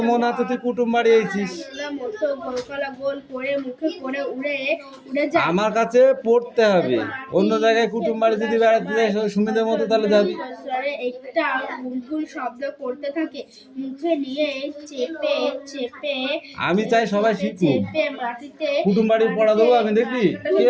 মনে হচ্ছে তুই কুটুম বাড়ি এইছিস। আমার কাছে পড়তে হবে, অন্য জায়গায় কুটুম বাড়ি যদি বেড়াতে যাই সুমিদের মতো তাহলে যাবি। একটা বুলবুল শব্দ করতে থাকে, মুখে নিয়ে চেপে চেপে আমি চাই সবাই শিখুক, মাটিতে কুটুম বাড়ি পড়া দেবো আমি, দেখবি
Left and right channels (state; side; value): identical; both; correlation 1.00